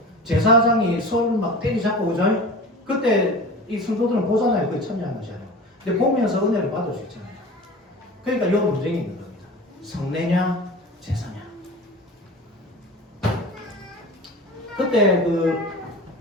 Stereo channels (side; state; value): both; normal; correlation 0.36